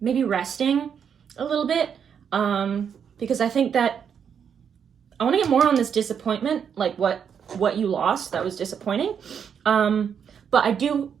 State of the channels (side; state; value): left; quieter; 7.6 dB